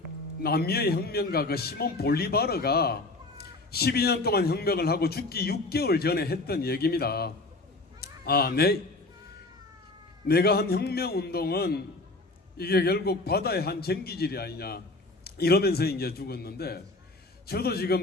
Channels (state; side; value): quieter; right; 3.1 dB